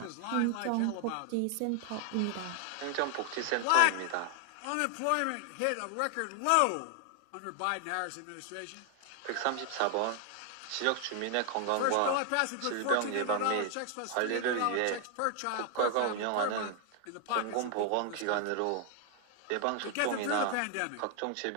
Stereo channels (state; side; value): different; both; correlation 0.00